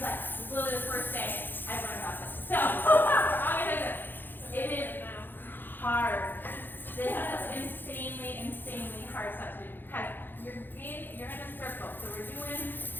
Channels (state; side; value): late; right; 0.094 ms